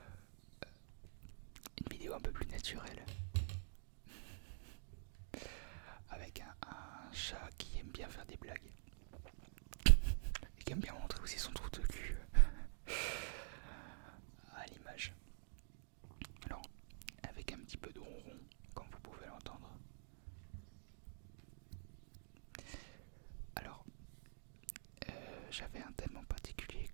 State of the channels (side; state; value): left; silent; digital silence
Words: Une vidéo un peu plus naturelle. Avec un chat qui aime bien faire des blagues. Et qui aime bien montrer aussi son trou de cul à l'image. Alors, avec un petit peu de ronron, comme vous pouvez l'entendre. Alors, j'avais un thème en particulier